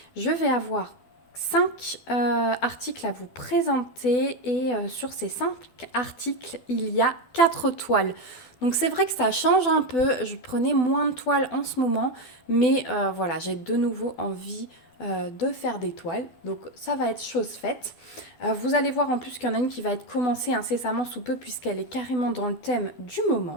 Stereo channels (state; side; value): late; right; 12 ms